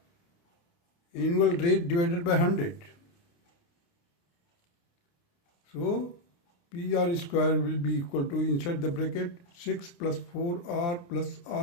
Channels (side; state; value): right; late; 29 ms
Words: annual rate divided by 100. So PR square will be equal to, inside the bracket, 6 plus 4R plus